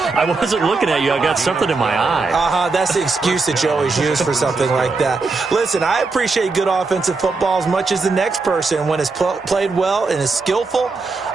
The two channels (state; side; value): quieter; left; 4.0 dB